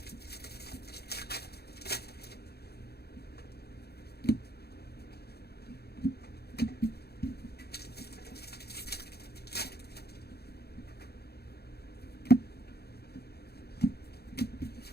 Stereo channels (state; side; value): late; right; 0.47 ms